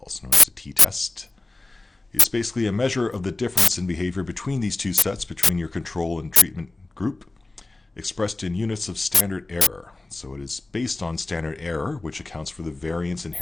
known as the t-test. It's basically a measure of the difference in behavior between these two sets, between your control and treatment group, expressed in units of standard error. So it is based on standard error, which accounts for the variance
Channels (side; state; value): right; quieter; 3.0 dB